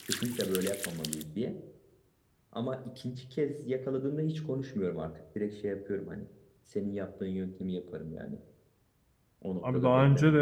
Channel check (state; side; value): identical; both; correlation 1.00